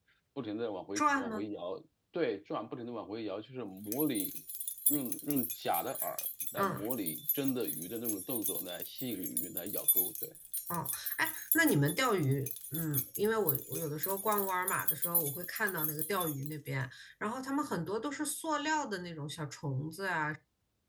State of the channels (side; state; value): both; identical; correlation 1.00